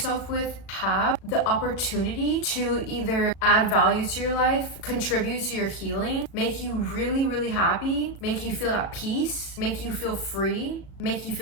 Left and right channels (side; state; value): right; late; 37 ms